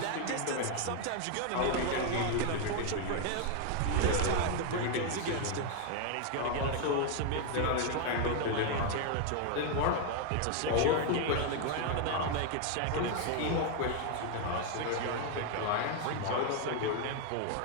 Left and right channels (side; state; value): both; different; correlation 0.01